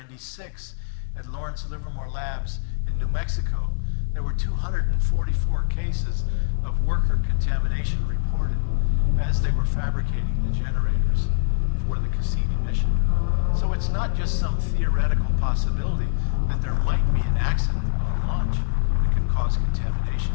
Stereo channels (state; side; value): silent; right; digital silence